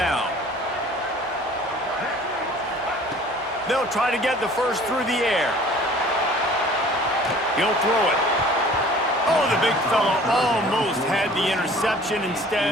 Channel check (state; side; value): normal; both; correlation 0.49